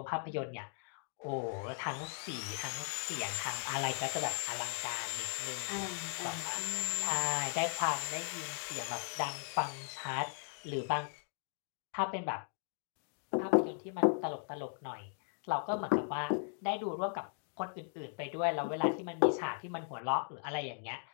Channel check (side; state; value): right; silent; 53 dB below the other